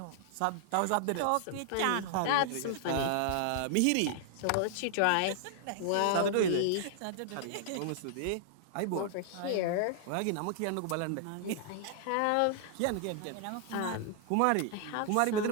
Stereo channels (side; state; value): both; different; correlation -0.01